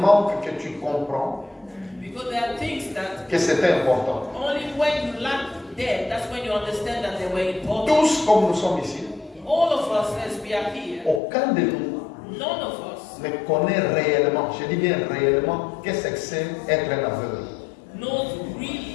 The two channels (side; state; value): right; drops out; at 11.2 s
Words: que tu comprends Because there are things that que c'était important. only when you lack them, that's when you understand that they were important. Tous comme nous sommes ici, All of us, as we are here, aucun de nous none of us ne connaît réellement, je dis bien réellement, qu'est-ce que c'est être un aveugle. knows